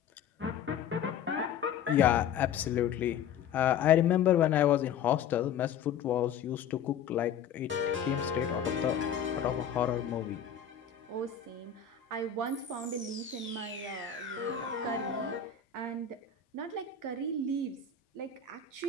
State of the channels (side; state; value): right; quieter; 7.7 dB